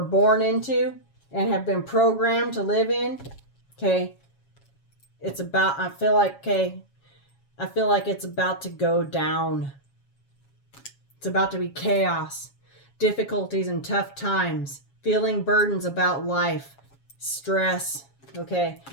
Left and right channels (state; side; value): late; right; 7.3 ms